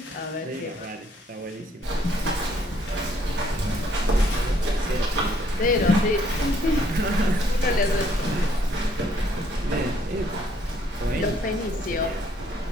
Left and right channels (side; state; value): both; normal; correlation 0.66